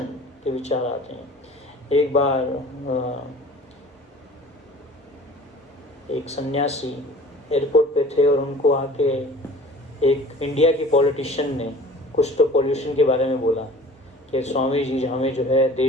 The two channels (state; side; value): normal; both; correlation 0.45